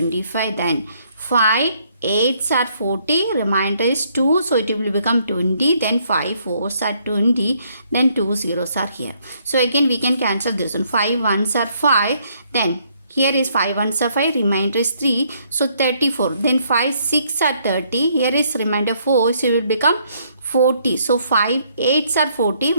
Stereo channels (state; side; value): inverted; both; correlation -0.69